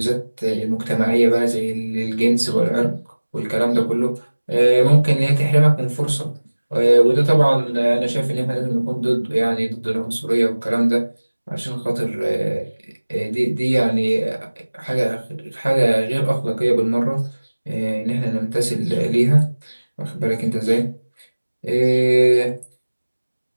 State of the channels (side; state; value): both; inverted; correlation -1.00